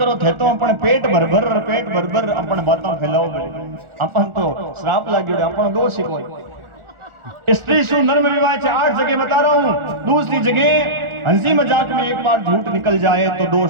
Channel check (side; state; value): left; late; 1.4 ms